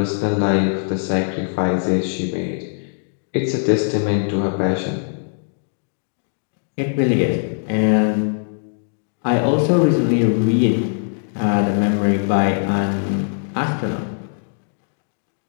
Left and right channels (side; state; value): right; silent; digital silence